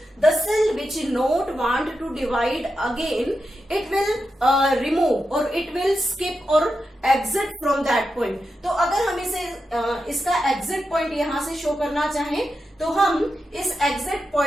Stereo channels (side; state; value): both; normal; correlation 0.88